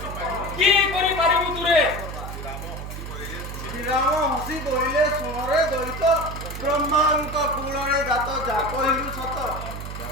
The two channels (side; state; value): right; noise; hum, 8 dB below the sound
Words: কি করি পারিবু তুরে শ্রীরাম হসি বইলে সোনরে দৈত ব্রহ্মাঙ্ক কুলরে জাত যা কহিলু সত